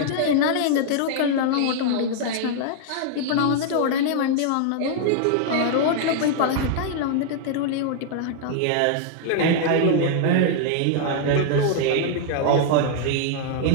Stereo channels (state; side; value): different; both; correlation 0.00